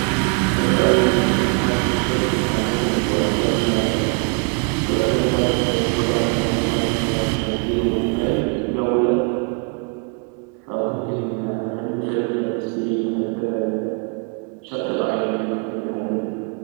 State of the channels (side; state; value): left; quieter; 36.4 dB